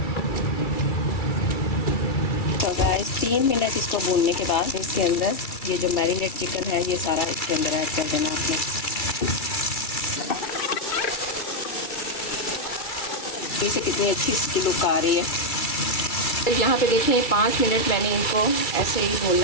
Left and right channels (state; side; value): late; right; 2.3 ms